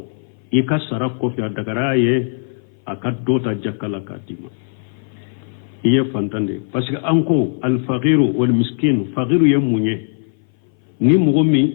i ka sara ko fi adagara ye akadota jakala katima iye fantande parce que anko al faqiru wal miskin faqiru yamunye ni mugomi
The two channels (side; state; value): right; silent; 58 dB below the other